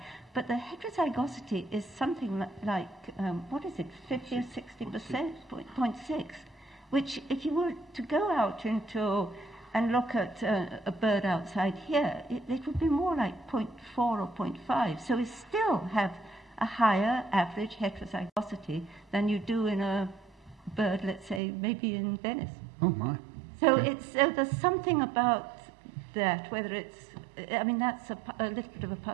but the heterozygosity is something like what is it, 50 or 60%, 0.6, which if you were to go out into and look at a bird outside here, it would be more like 0.4 or 0.5. So we still have a higher average heterozygosity than you do in a bird, let's say, maybe in Venice. Oh, my. So Okay. there's something about that, whether it's, I mean, that's a little bit of a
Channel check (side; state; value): left; drops out; at 21.4 s